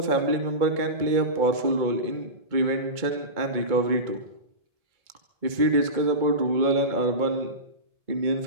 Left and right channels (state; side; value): late; left; 2.2 ms